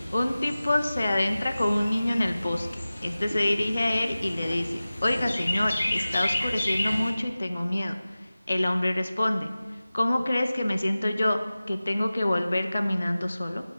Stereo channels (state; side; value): inverted; both; correlation -0.97